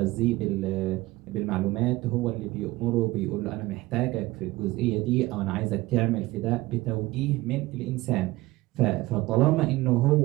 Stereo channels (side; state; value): left; quieter; 19.3 dB